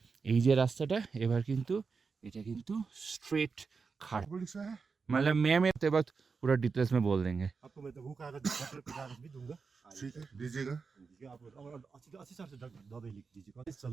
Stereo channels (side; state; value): left; quieter; 5.0 dB